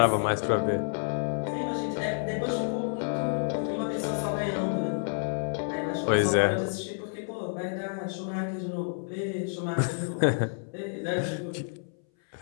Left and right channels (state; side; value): silent; right; 58 dB below the other